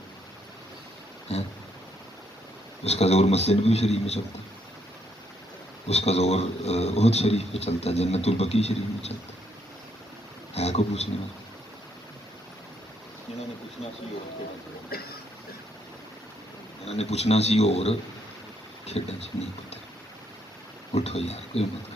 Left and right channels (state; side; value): normal; both; correlation 0.73